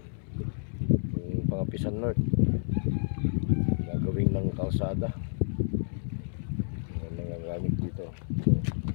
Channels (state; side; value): silent; right; 58 dB below the other